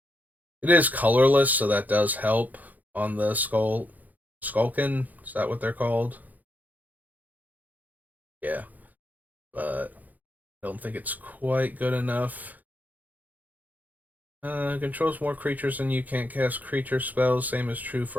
It is colorless, so that does help on the Skulkin. Is that what they're called? Yeah. But I don't think it's quite good enough. Controls more creatures than you, can't cast creature spells. Same is true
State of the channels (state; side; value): late; left; 0.081 ms